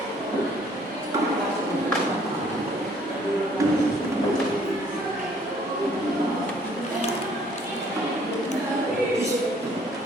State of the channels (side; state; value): both; normal; correlation 0.61